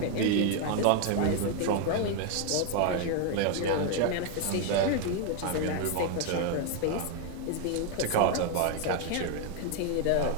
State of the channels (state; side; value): different; both; correlation 0.01